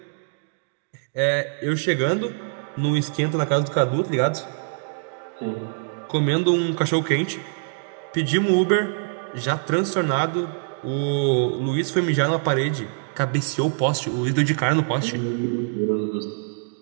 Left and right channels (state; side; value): silent; left; digital silence